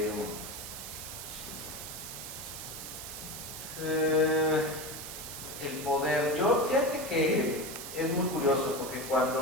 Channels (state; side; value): noise; right; hiss, 9 dB below the sound